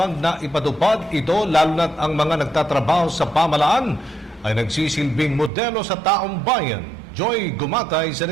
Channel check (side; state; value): left; drops out; at 5.5 s